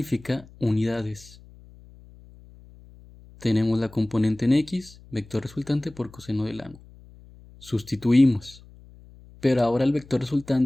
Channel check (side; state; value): left; noise; hum, 23 dB below the sound